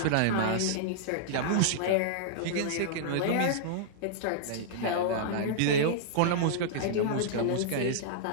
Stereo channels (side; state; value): both; different; correlation -0.02